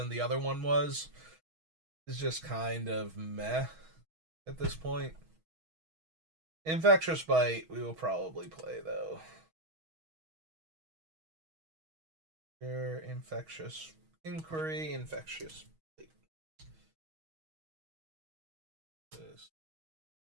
the other one was, is just kind of meh at this point. Infectious Bite we will probably play though. Infectious Inquiry, Infectious Bite.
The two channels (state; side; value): late; left; 6.3 ms